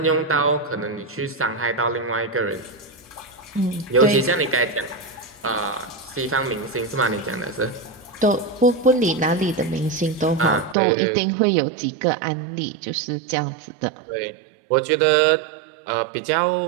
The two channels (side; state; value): left; drops out; at 10.8 s